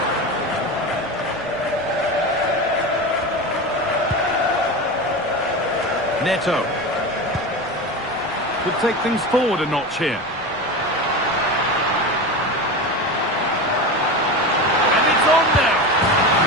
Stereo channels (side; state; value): left; noise; rumble, 24 dB below the sound